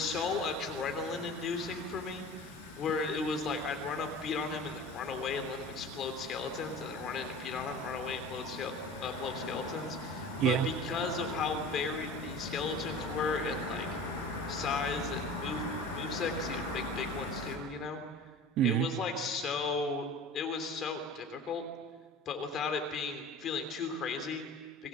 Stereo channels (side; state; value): both; normal; correlation 0.38